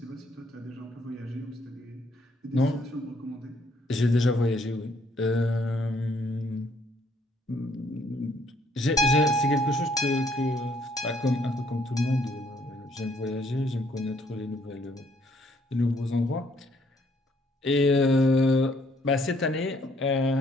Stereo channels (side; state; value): both; normal; correlation 0.67